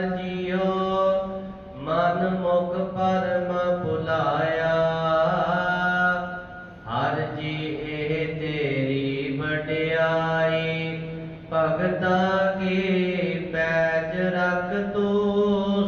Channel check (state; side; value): identical; both; correlation 1.00